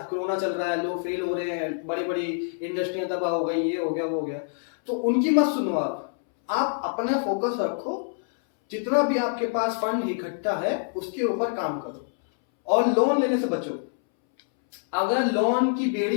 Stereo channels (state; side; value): silent; right; 61 dB below the other